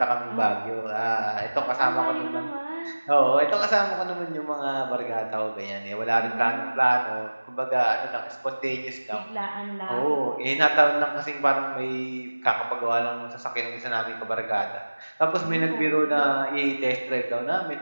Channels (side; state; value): both; inverted; correlation -1.00